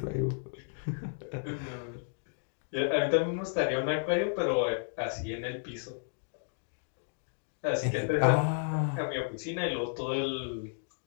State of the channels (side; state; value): right; silent; digital silence